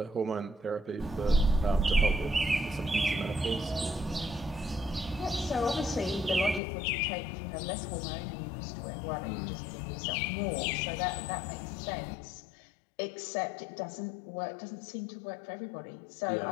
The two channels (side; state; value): right; drops out; at 6.6 s